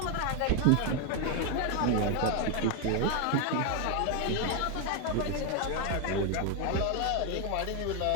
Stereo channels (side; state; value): both; different; correlation 0.01